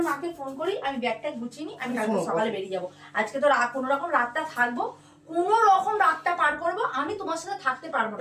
মাকে ফোন করি, আমি ব্যাগটা গুছিয়ে নিই, আমি কালকে সকালে বেরিয়ে যাবো। আজকে তো কোনো রকম রাতটা থাকবো, কোনো রকম রাতটা পার করবো। আমি তোমার সাথে থাকতে পারবো না,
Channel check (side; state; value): both; identical; correlation 1.00